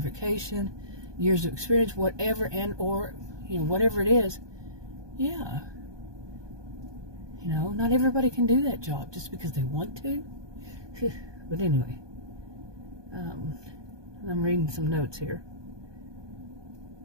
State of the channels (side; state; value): left; late; 1.2 ms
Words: years of experience, whatever, and or, you know, whatever it is, yeah. You know, not everybody can do that job just because they want to. But anyway, I'm reading some notes here.